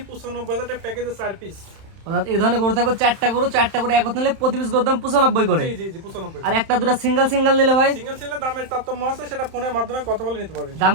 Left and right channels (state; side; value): late; left; 31 ms